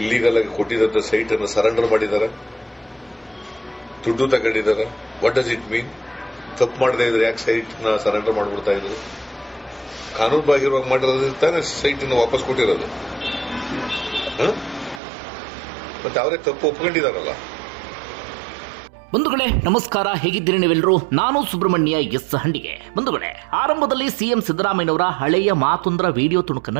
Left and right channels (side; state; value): left; drops out; at 15.0 s